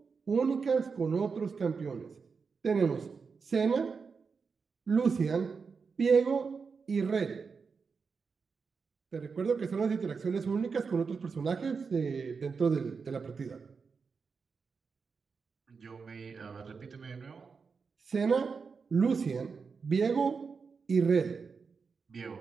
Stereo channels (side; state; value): left; quieter; 5.3 dB